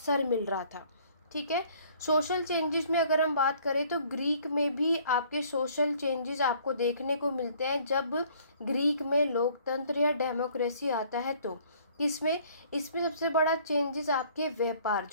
मिल रहा था। ठीक है। सोशल चेंजेस में अगर हम बात करें तो ग्रीक में भी आपके सोशल चेंजेस आपको देखने को मिलते हैं जब ग्रीक में लोकतंत्र या डेमोक्रेसी आता है तो किसमें, इसमें सबसे बड़ा चेंजेस आपके व्यापार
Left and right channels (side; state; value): both; inverted; correlation -0.58